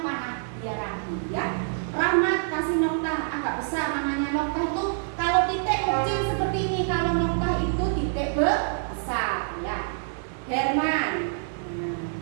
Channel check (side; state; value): left; silent; digital silence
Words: biar rapi ya. Rahmat kasih noktah agak besar, namanya noktah itu kalau titik kecil seperti ini, kalau noktah itu titik besar ya. Herman,